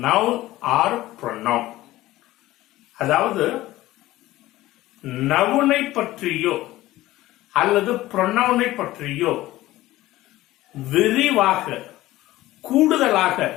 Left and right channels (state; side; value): quieter; right; 16.6 dB